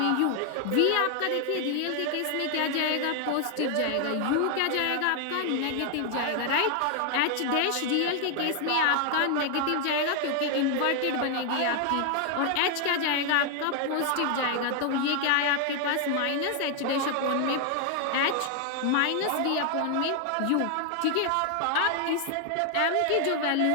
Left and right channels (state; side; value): different; both; correlation 0.00